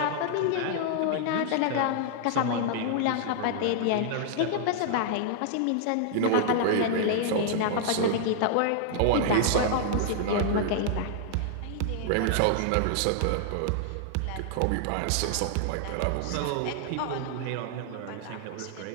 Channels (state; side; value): different; both; correlation -0.01